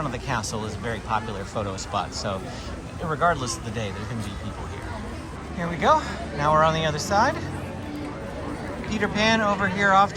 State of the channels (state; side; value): identical; both; correlation 1.00